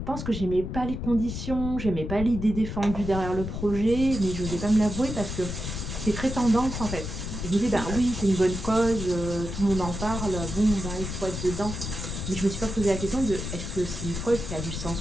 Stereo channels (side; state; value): left; noise; rumble, 6 dB below the sound